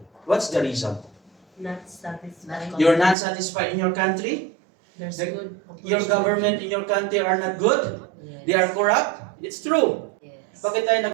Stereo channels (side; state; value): left; drops out; at 3.2 s